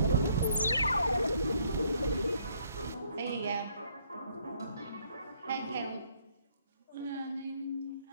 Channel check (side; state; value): both; inverted; correlation -0.67